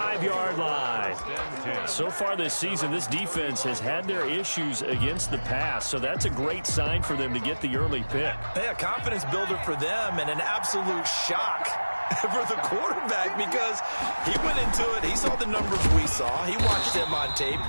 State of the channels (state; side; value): inverted; both; correlation -1.00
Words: line. So far this season, this defense has had their issues against the pass, so that's a great sign for them to get the early pick. Yeah, confidence builder for them and an absolute shock for the quarterback because he went into it. He saw the numbers we saw. He watched them on tape.